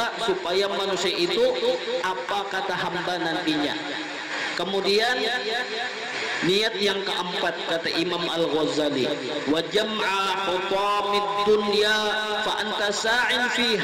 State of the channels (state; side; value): identical; both; correlation 1.00